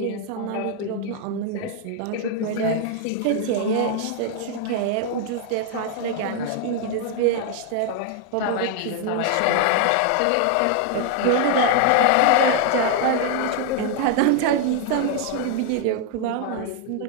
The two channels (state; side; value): different; both; correlation 0.00